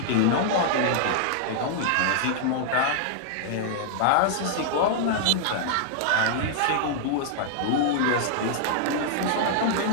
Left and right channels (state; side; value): different; both; correlation -0.01